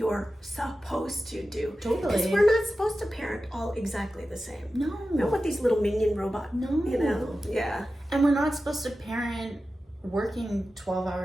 supposed to do? Totally. Because we're not supposed to parent all exactly the same. No. Not with these little minion robots. No. Yeah. And we're not supposed to parent working 12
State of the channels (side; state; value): both; normal; correlation 0.93